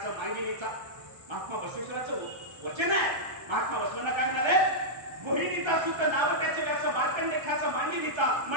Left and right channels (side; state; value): left; late; 1.3 ms